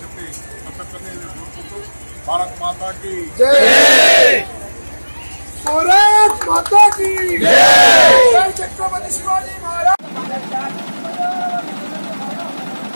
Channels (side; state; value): both; inverted; correlation -1.00